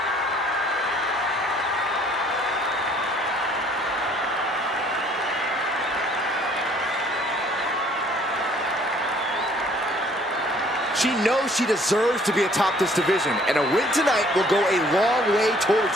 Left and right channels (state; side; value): normal; both; correlation 0.59